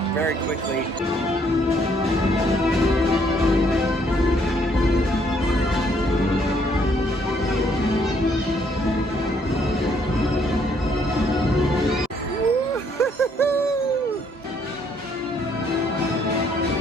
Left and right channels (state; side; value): normal; both; correlation 0.67